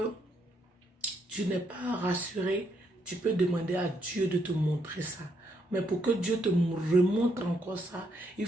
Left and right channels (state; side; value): normal; both; correlation 0.74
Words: tu n'es pas rassuré, tu peux demander à Dieu de te montrer ça. Mais pour que Dieu te remontre encore ça, il